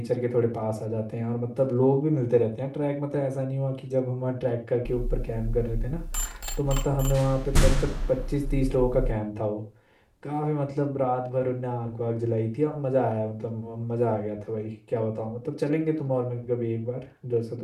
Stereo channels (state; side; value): identical; both; correlation 1.00